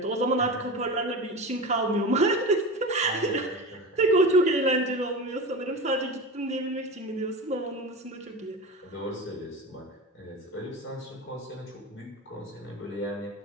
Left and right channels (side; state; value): both; normal; correlation 0.27